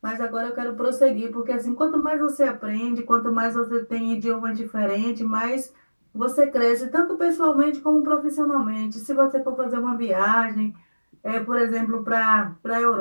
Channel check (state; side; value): inverted; both; correlation -1.00